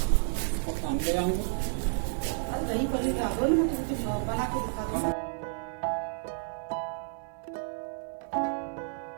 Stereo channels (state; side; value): silent; left; digital silence